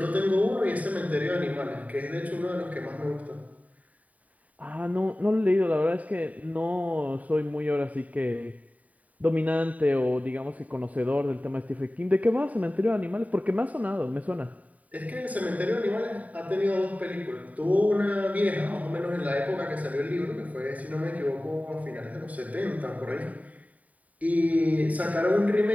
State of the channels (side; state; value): left; late; 0.071 ms